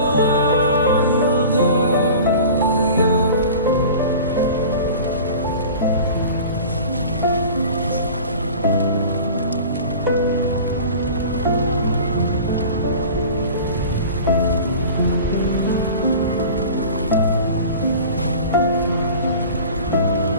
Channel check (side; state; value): both; inverted; correlation -0.39